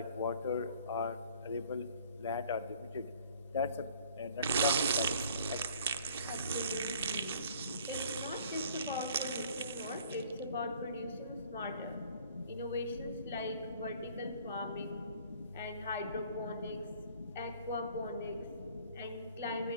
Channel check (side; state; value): both; inverted; correlation -0.54